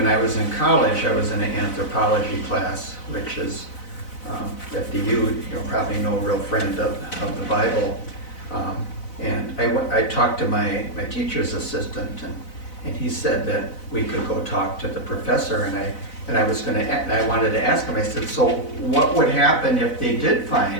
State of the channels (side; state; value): right; late; 4.0 ms